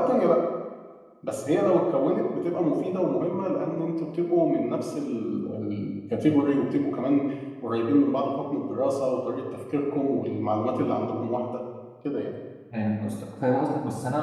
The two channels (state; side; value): identical; both; correlation 1.00